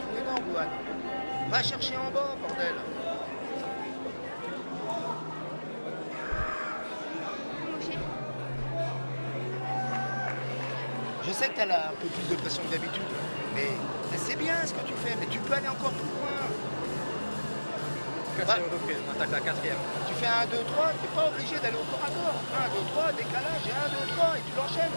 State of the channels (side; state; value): both; inverted; correlation -1.00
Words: énorme, Louane. Va chercher en bas, bordel. Je sais que t'as là un peu plus de pression que d'habitude, mais c'est bien ce que tu fais, mais tu peux aller encore plus loin. Quatrième reprise, on attaque la quatrième. Tu fais 1, 2, 3, t'es pas obligé d'aller au corps à corps. 1, 2, 3, décalage, et 1, 2, 3, et tu l'enchaînes.